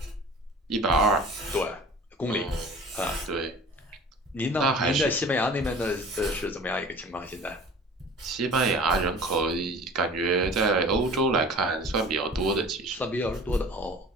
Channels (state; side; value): normal; both; correlation 0.42